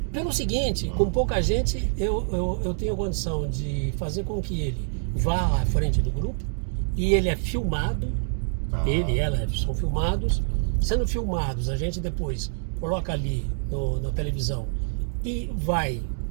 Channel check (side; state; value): left; silent; digital silence